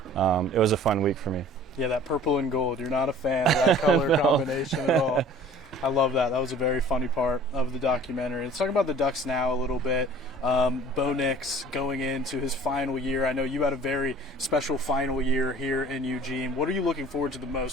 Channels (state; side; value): normal; both; correlation 0.48